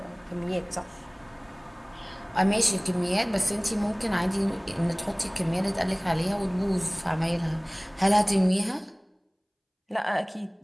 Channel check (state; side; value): identical; both; correlation 1.00